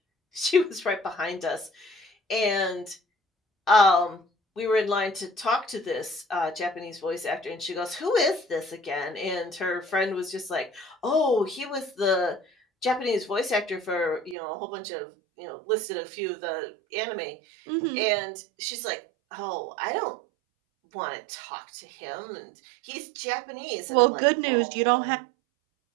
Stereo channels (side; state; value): left; drops out; at 14.4 s